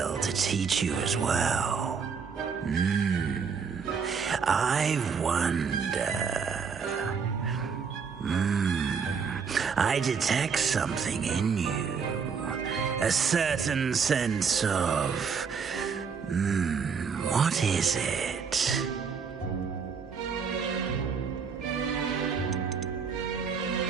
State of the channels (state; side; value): quieter; left; 6.0 dB